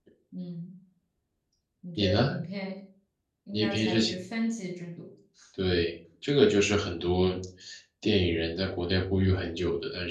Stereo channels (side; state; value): both; identical; correlation 1.00